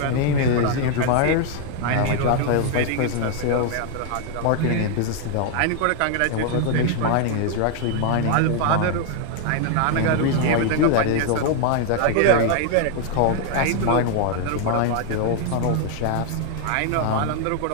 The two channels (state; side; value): different; both; correlation 0.00